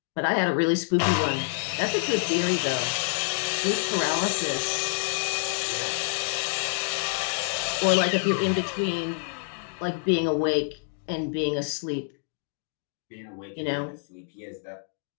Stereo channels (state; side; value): silent; right; digital silence